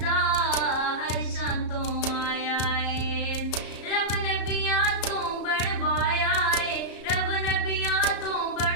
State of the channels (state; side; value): late; right; 34 ms